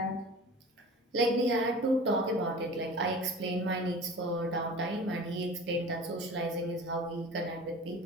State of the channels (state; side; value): normal; both; correlation 0.38